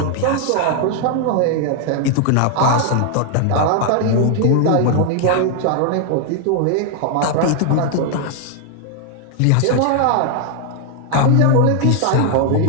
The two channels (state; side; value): different; both; correlation 0.00